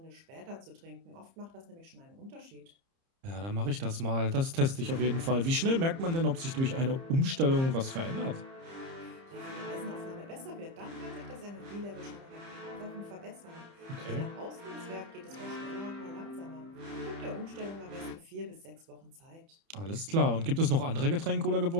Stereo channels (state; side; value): late; left; 30 ms